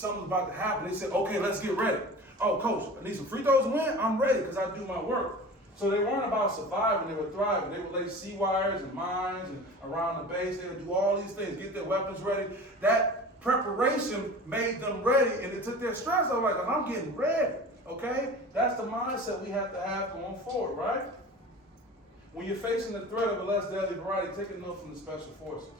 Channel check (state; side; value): normal; both; correlation 0.37